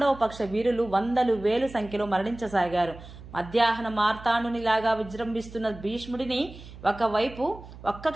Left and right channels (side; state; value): right; noise; hum, 16 dB below the sound